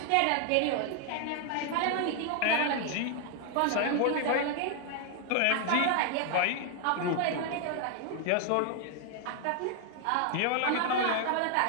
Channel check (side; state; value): both; different; correlation 0.00